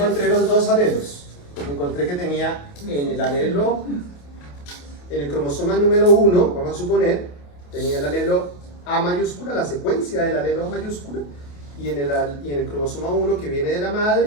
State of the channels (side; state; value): right; late; 28 ms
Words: los dos alelos. Encontré que tenía en el alelo, en el cromosoma número 1, vamos a suponer, tenía el alelo A mayúscula, la secuencia del alelo A mayúscula, y en el cromosoma 1 que viene de la